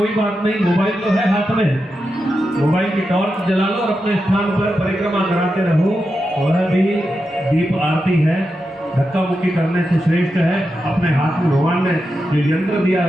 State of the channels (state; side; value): normal; both; correlation 0.88